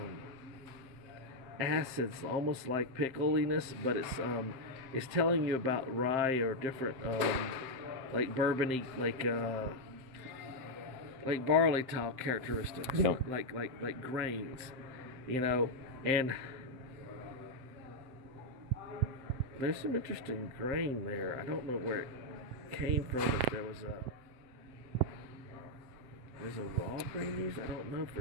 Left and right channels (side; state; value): left; late; 7.7 ms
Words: acids, almost like pickliness, but it's telling you about rye or different like bourbony, like barley top characteristics, Yep. like grains, you know, and there's some interesting grain there. I don't know where it came from. If there's a raw grain used, I don't know